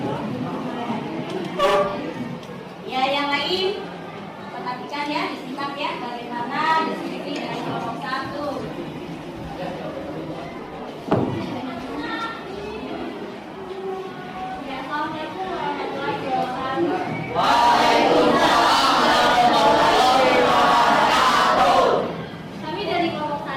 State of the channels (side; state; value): both; identical; correlation 1.00